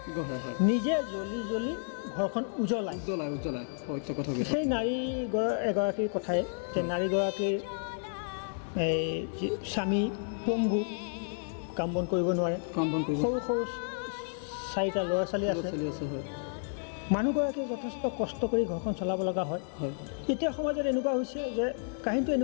নিজে জ্বলি ঘৰখন উজ্বলাই। সেই নাৰী এগৰাকীৰ কথাই যে নাৰীগৰাকীৰ এই স্বামী পংগু, কাম বন কৰিব নোৱাৰে, সৰু সৰু 4টা ল'ৰা ছোৱালী আছে। মানুহগৰাকীয়ে যথেষ্ট কষ্ট কৰি ঘৰখন চলাব লগা হয়। এতিয়া সমাজত এনেকুৱা হৈছে যে কাহিনীটো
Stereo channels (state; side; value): silent; right; digital silence